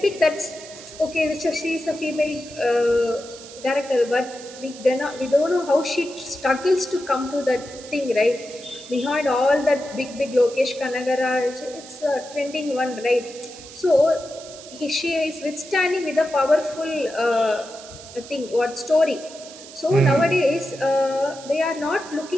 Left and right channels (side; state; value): right; noise; hiss, 16 dB below the sound